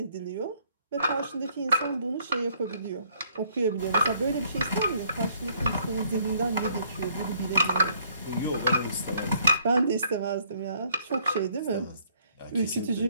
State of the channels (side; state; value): both; inverted; correlation -0.65